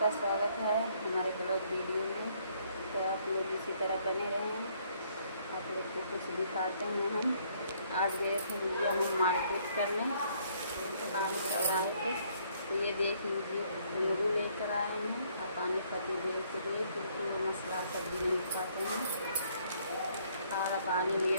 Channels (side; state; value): both; inverted; correlation -0.66